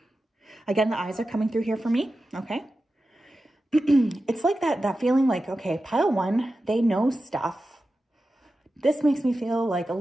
Again, the eyes are coming through here for me. Okay. It's like that feeling like, okay, pile one, they know stuff. This makes me feel like a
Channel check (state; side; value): normal; both; correlation 0.93